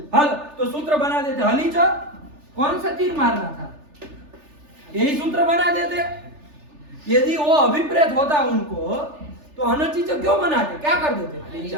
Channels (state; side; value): late; left; 3.4 ms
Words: हल। तो सूत्र बना देते हली च, कौन सा तीर मारना था? यही सूत्र बना देते। यदि वो अभिप्रेत होता उनको तो अनचित क्यों बनाते? क्या कर देते?